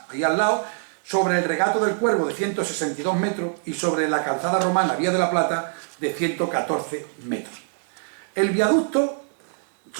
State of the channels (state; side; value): silent; left; 63 dB below the other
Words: ahí al lado, sobre el Regato del Cuervo de 162 metros y sobre la calzada romana Vía de la Plata de 114 metros. El viaducto